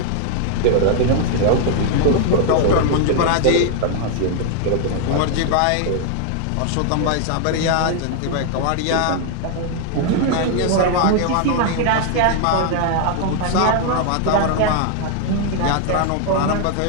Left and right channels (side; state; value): both; different; correlation 0.00